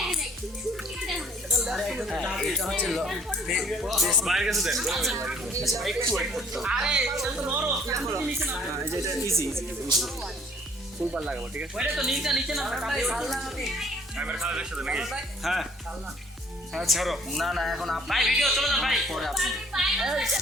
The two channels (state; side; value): normal; both; correlation 0.59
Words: বাইরের কাছে দেন আরে এটা তো নরম নিচে না এটা ইজি ফুলবার লাগাবো ঠিক আছে ওইটা তো নিচে না ক্যামেরা খারাপ দেখতে নাকি হ্যাঁ হ্যাঁ ছাড়ো না এখন ভাই ভিডিও চলে যান ভাই পরে আপনি